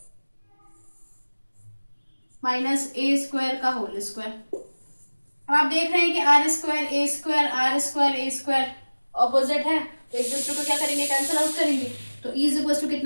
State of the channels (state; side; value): inverted; both; correlation -1.00